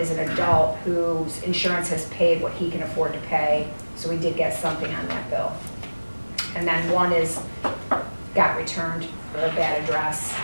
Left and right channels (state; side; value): inverted; both; correlation -1.00